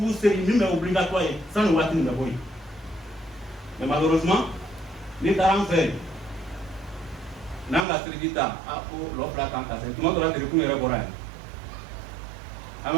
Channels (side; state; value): left; drops out; at 7.9 s